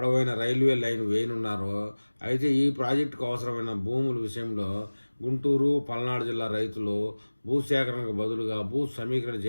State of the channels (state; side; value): inverted; both; correlation -1.00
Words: రైల్వే లైన్ వేయనున్నారు. అయితే ఈ ప్రాజెక్టుకు అవసరమైన భూముల విషయంలో గుంటూరు, పల్నాడు జిల్లా రైతులు భూసేకరణకు బదులుగా భూ సమీకరణ